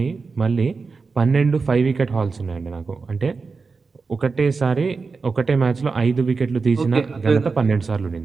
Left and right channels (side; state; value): left; quieter; 4.5 dB